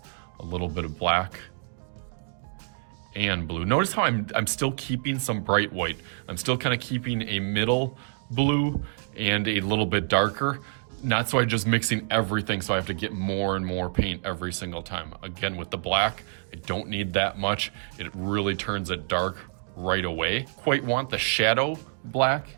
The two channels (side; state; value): left; silent; digital silence